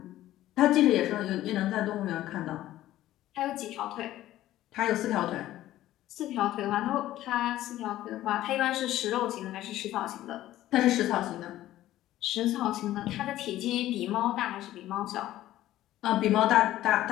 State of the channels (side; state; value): right; quieter; 14.3 dB